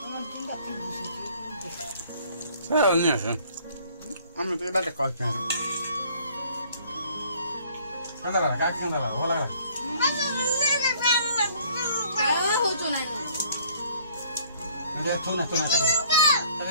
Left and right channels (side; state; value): both; inverted; correlation -0.58